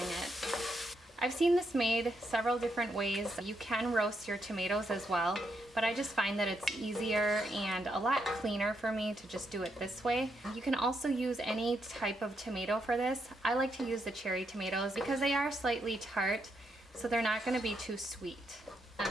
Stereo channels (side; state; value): both; normal; correlation 0.80